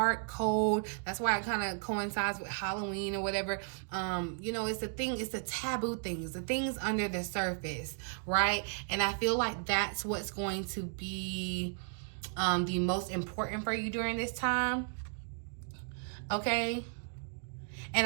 cold. That's why it kind of coincides with Halloween or whatever. You know, it's the taboo things, the things under the surface, right? And I feel like that's what's going to be the most important for you during this time, okay?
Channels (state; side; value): silent; left; 55 dB below the other